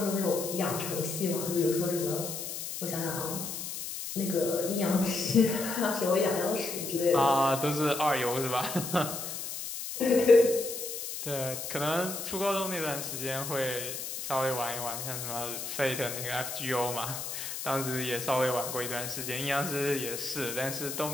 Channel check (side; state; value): left; noise; hiss, 6 dB below the sound